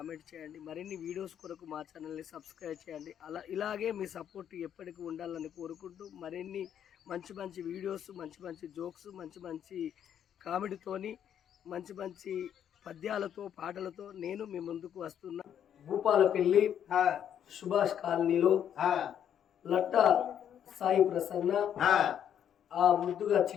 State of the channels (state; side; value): quieter; right; 9.4 dB